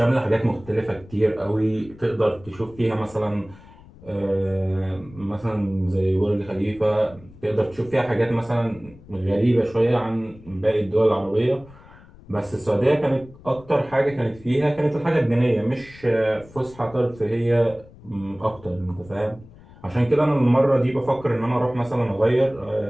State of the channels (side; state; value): left; noise; rumble, 22 dB below the sound